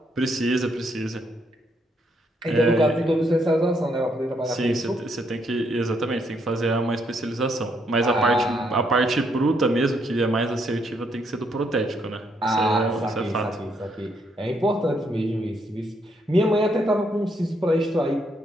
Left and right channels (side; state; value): both; normal; correlation 0.74